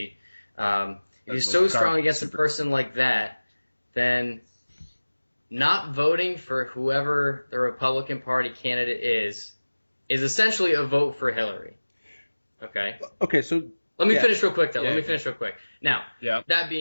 If you're so strong against a person like that, then not voting for whoever the Republican Party candidate is essentially a vote for Hillary. Okay. Okay. So let me finish real quick, though. Let me finish real quick. Now, yeah. that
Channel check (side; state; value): both; inverted; correlation -1.00